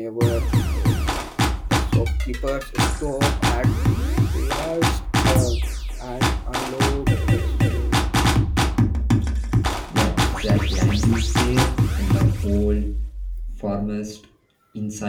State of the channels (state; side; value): identical; both; correlation 1.00